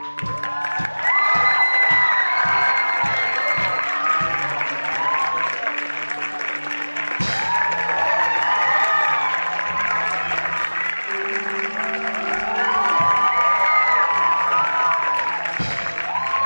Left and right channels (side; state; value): both; inverted; correlation -1.00